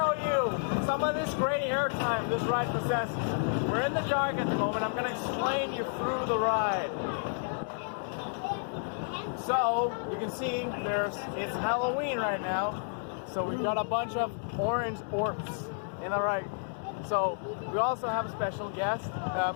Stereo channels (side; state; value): right; silent; digital silence